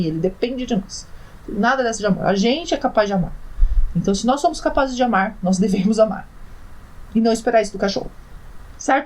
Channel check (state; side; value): identical; both; correlation 1.00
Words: Ele depende de nós. Nada dessa de amor. A gente é capaz de amar. Então, se nós somos capazes de amar, nós devemos amar. E não esperar isso do cachorro.